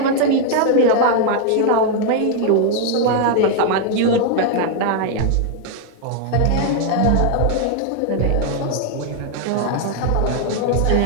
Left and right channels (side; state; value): both; different; correlation 0.00